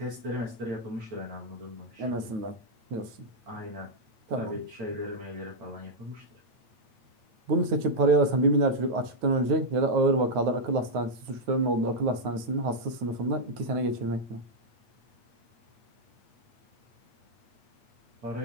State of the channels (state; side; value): late; left; 9.3 ms